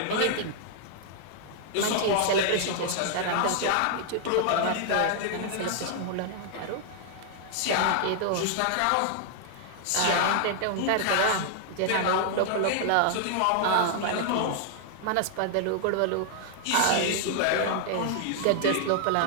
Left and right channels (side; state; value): both; different; correlation 0.00